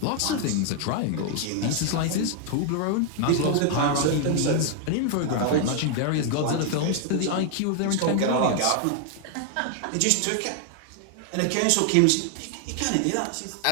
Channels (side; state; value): both; different; correlation 0.00